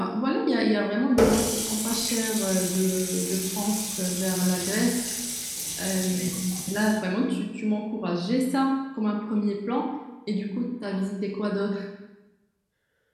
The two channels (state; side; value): identical; both; correlation 1.00